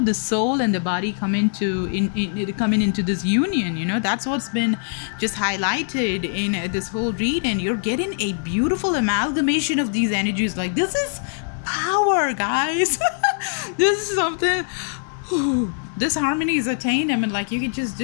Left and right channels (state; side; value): silent; right; digital silence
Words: the soul and the body come coming into this union. That's what's been just highlighted in this whole read, and you're getting a beautiful amalgamation of these energies. Like, this is power, guys. This is something. This harmony is attained. I mean, like, you can just